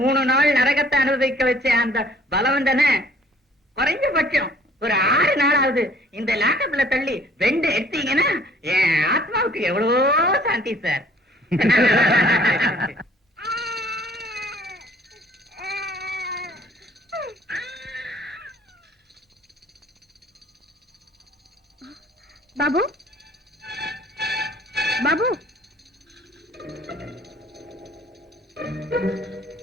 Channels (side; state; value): both; normal; correlation 0.56